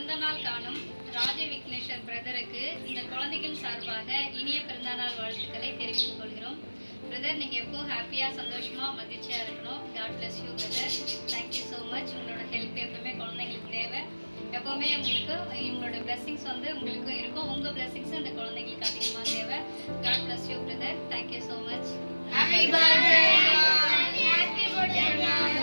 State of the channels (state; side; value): inverted; both; correlation -1.00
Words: காணும் ராஜ விக்னேஸ்வர் பிரதருக்கு இந்த குழந்தைகள் சார்பாக இனிய பிறந்தநாள் வாழ்த்துக்களை தெரிவித்துக் கொள்கிறோம். பிரதர், நீங்கள் எப்போவும் ஹாப்பியாக சந்தோஷமாக மகிழ்ச்சியாக இருக்கணும். God bless you brother. Thank you so much. உங்களோட ஹெல்ப் எப்பவுமே குழந்தைங்களுக்கு தேவை. எப்போவுமே உங்களுக்கு உங்களோட பிளெஸிங்ஸ் உங்களுக்கும் இருக்கும். உங்கள் பிளெஸிங்ஸ் இந்த குழந்தைங்களுக்கு அதிகமாக தேவை. God bless you brother. Thank you so much. Happy birthday. Happy birthday.